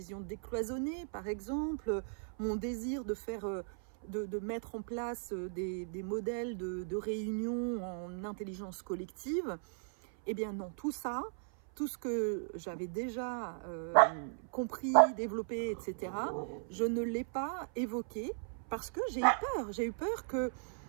décloisonnée par exemple, mon désir de faire, de mettre en place des modèles de réunion en intelligence collective, eh bien non, tout ça, tout ce que j'avais déjà compris, développé, etc., je ne l'ai pas évoqué parce que j'ai eu peur. J'ai eu peur que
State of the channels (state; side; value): silent; left; 53 dB below the other